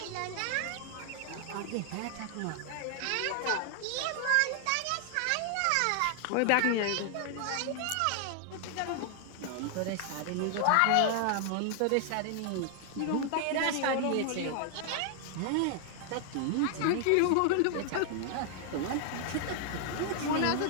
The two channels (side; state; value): both; different; correlation 0.00